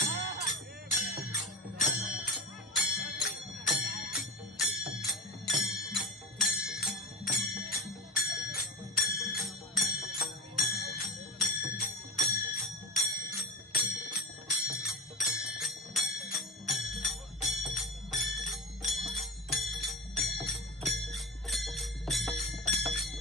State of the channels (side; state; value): both; normal; correlation 0.32